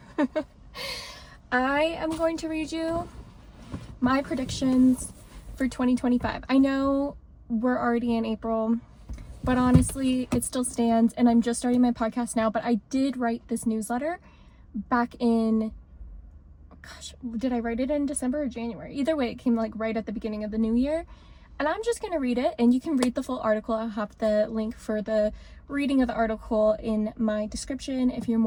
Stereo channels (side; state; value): both; identical; correlation 1.00